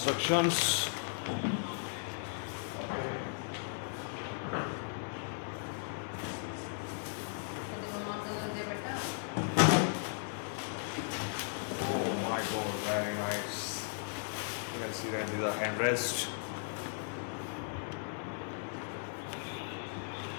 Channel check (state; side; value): silent; right; 53 dB below the other